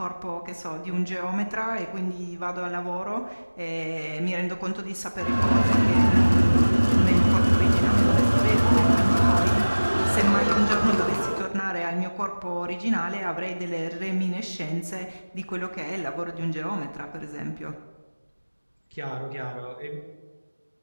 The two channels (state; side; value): inverted; both; correlation -1.00